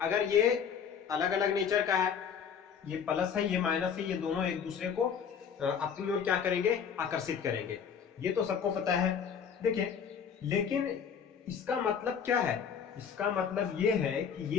अगर ये अलग अलग नेचर का है, ये प्लस है ये माइनस है, ये दोनों एक दूसरे को अपनी ओर क्या करेंगे, आकर्षित करेंगे, ये तो सबको पता है। देखिए, लेकिन इसका मतलब क्या है, इसका मतलब ये है कि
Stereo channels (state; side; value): quieter; right; 7.2 dB